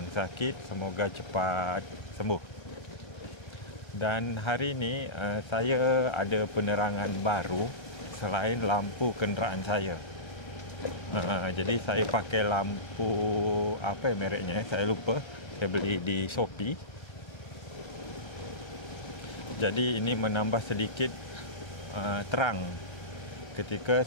sakit semoga cepat sembuh. Dan hari ini saya ada penerangan baru selain lampu kenderaan saya. Jadi saya pakai lampu apa mereknya, saya lupa. Saya beli di Shopee. Jadi ini menambah sedikit terang ketika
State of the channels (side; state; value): right; late; 1.3 ms